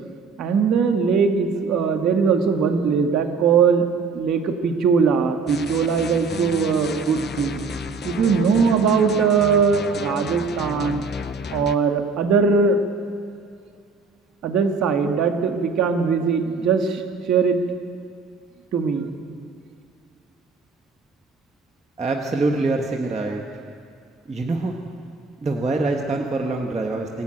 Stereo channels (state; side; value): quieter; left; 4.7 dB